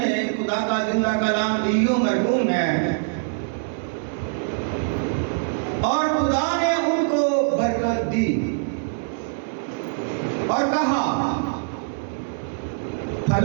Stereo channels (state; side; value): silent; left; 60 dB below the other